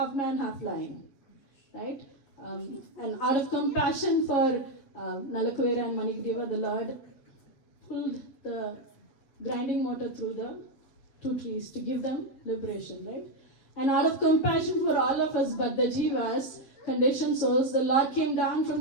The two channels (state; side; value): late; right; 7.8 ms